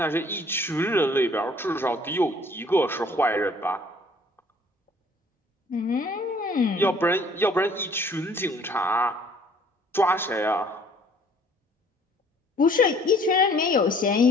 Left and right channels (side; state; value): both; normal; correlation 0.57